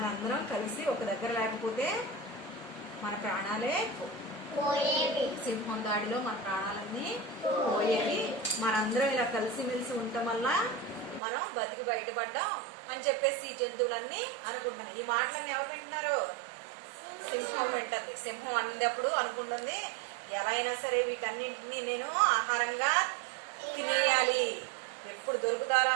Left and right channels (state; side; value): drops out; left; at 11.2 s